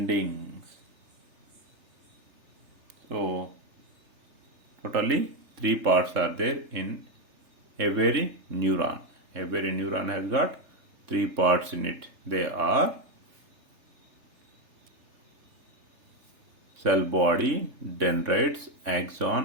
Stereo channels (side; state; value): left; late; 3.3 ms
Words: So totally three parts are there in every neuron. Every neuron has got three parts in it. They are cell body, dendrites,